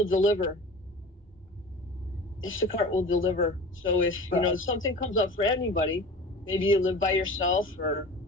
deliver. Instacart will deliver. So if something comes up for anybody, maybe you live by yourself, or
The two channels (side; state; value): both; normal; correlation 0.37